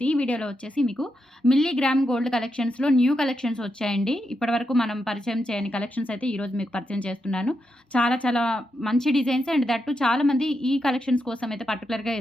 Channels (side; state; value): both; normal; correlation 0.84